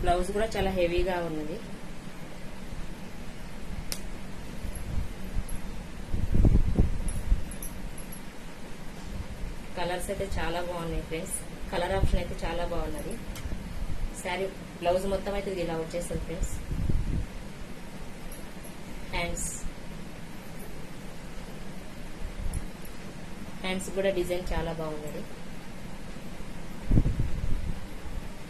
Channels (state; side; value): identical; both; correlation 1.00